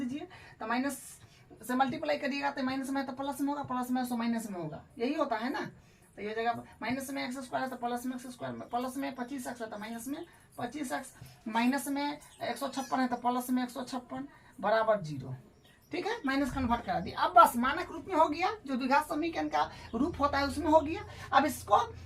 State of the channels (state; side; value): identical; both; correlation 1.00